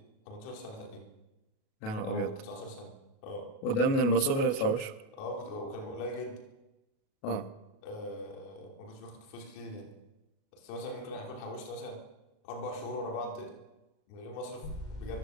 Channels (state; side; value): late; right; 37 ms